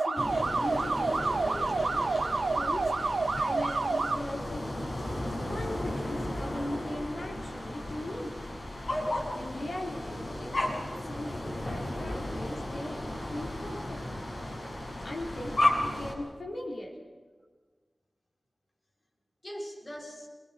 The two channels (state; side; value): normal; both; correlation 0.94